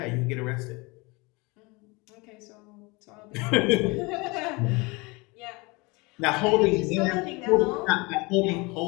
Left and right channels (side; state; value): right; quieter; 26.1 dB